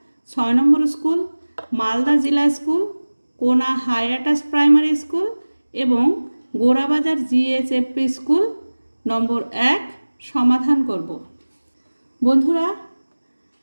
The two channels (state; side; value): inverted; both; correlation -1.00